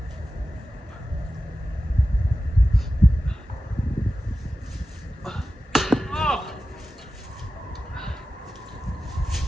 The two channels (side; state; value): both; normal; correlation 0.93